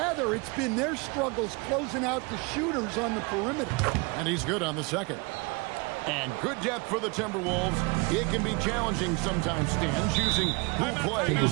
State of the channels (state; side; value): quieter; left; 28.8 dB